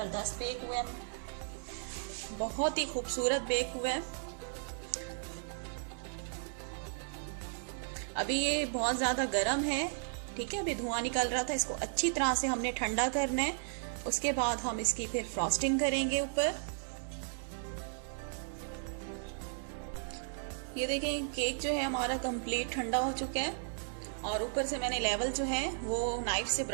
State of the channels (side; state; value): left; silent; 54 dB below the other